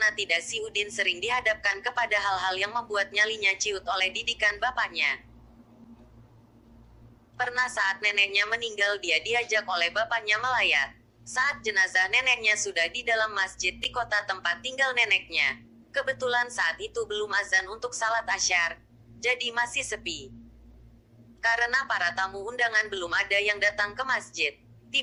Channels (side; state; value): both; identical; correlation 1.00